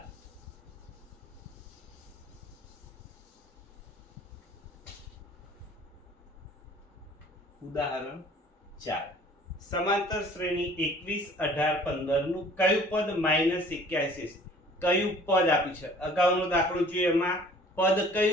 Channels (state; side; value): normal; both; correlation 0.52